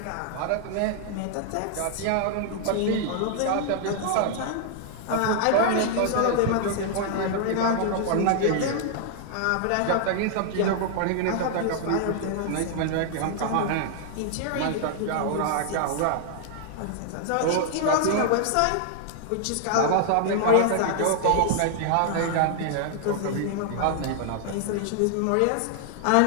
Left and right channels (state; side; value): different; both; correlation -0.01